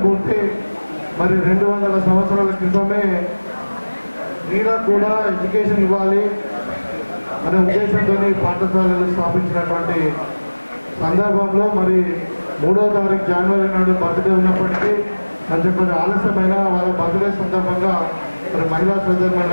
మరి 200 సంవత్సరాల క్రితమే నీళ్ళకు కూడా ఎడ్యుకేషన్ ఇవ్వాలి అనే ఉద్దేశంతో పాఠశాలలు స్థాపించినటువంటి సందర్భంలో మరి 3వ తారీఖు జనవరి నాడు బర్త్డే ఉన్నప్పటికీ కొంచెం ఆలస్యమైన వాళ్ళ బర్త్డే సందర్భంగా మరి మహిళా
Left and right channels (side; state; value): both; inverted; correlation -1.00